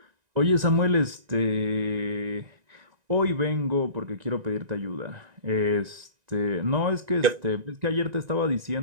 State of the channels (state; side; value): late; left; 1.9 ms